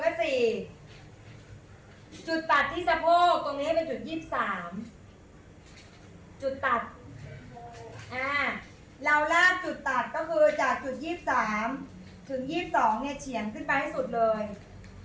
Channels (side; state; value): both; identical; correlation 1.00